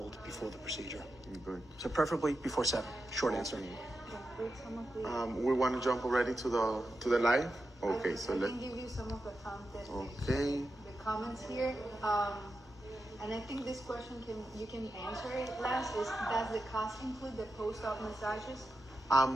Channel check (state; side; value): normal; both; correlation 0.89